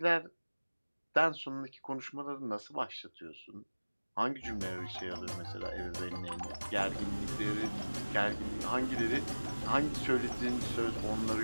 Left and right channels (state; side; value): inverted; both; correlation -1.00